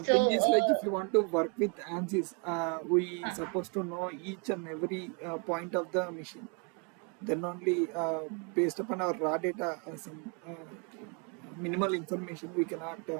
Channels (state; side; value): quieter; left; 35.1 dB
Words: thing so is like if you want to work with ANSYS, we uh, supposed to know each and every point of the machine. Then only based upon our raw data, some minimal information we cannot